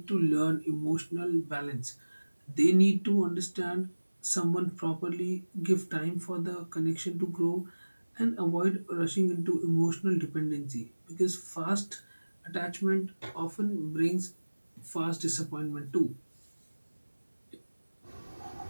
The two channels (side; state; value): both; inverted; correlation -1.00